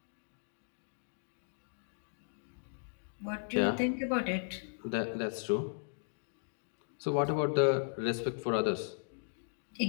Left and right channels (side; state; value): right; silent; digital silence